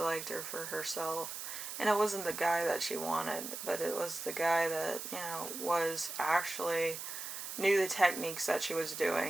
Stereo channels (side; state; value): right; noise; hiss, 7 dB below the sound